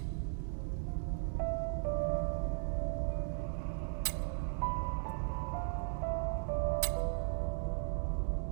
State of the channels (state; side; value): silent; left; digital silence